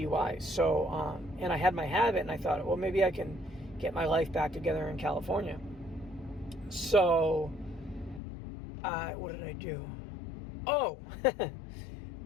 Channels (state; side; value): drops out; right; at 8.2 s